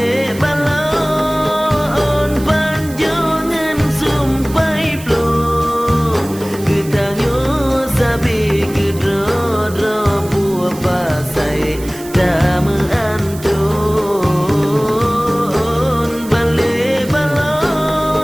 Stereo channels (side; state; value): right; noise; hiss, 17 dB below the sound